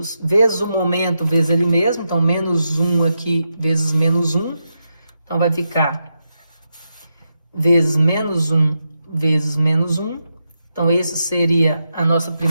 vezes o momento, vezes ele mesmo. Então, menos 1 aqui, vezes menos 1. Então, vai ficar vezes menos 1, vezes menos 1. Então, esse seria a nossa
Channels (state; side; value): inverted; both; correlation -0.85